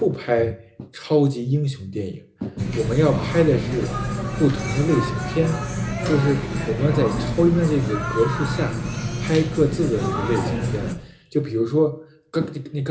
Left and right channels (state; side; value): identical; both; correlation 1.00